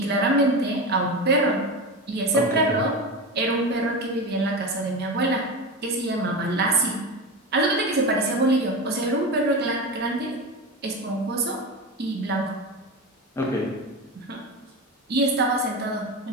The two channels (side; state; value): both; normal; correlation 0.22